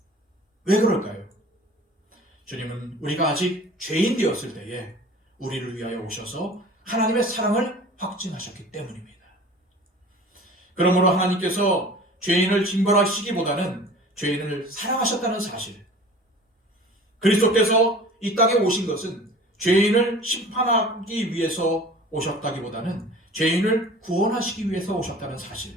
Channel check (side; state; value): both; normal; correlation 0.43